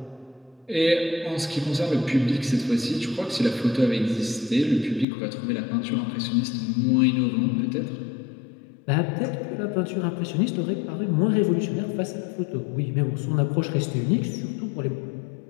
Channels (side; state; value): right; drops out; at 5.1 s